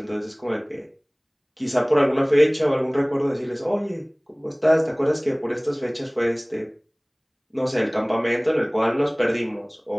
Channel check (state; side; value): identical; both; correlation 1.00